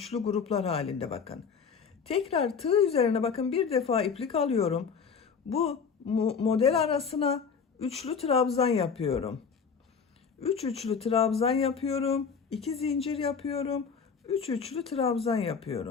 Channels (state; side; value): quieter; right; 6.1 dB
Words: gruplar halinde bakın. Tekrar tığ üzerine bakın bir defa iplik alıyorum. Bu model arasına üçlü trabzan yapıyorum. 3 üçlü trabzan yapıyorum. 2 zincir yapıyorum. 3 üçlü trabzan